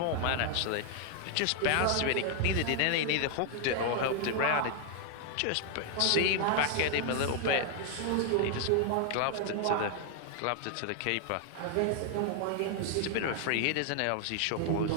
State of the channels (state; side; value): different; both; correlation 0.00